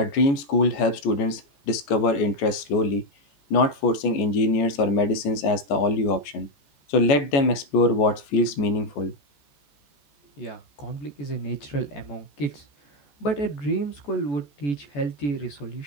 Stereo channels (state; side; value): late; right; 14 ms